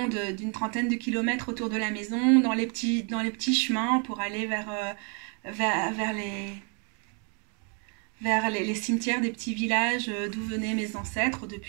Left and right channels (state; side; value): quieter; left; 38.2 dB